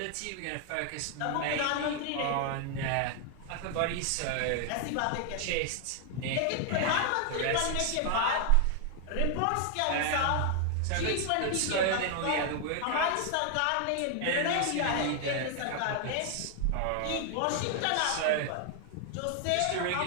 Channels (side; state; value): both; different; correlation 0.00